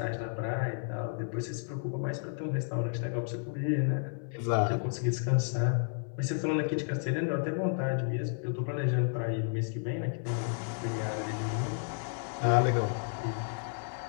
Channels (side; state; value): right; silent; 56 dB below the other